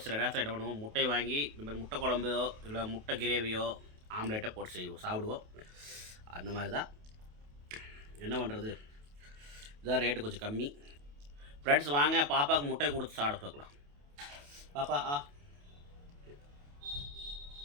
சில நேரத்தில் என்ன பண்ணுவோம், முட்டை வாங்கி இந்த மாதிரி முட்டை குழம்போ இல்லை முட்டை கிரேவியோ ஆம்லேட்டோ போட்டு சாப்பிடுவோம். அந்த மாதிரி தான். என்ன பண்ணுறது, இதான் ரேட்டு கொஞ்சம் கம்மி. ஃப்ரெண்ட்ஸ், வாங்க பாப்பாவுக்கு முட்டை கொடுத்து சாப்பிட பார்க்கலாம். பாப்பா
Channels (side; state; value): left; late; 28 ms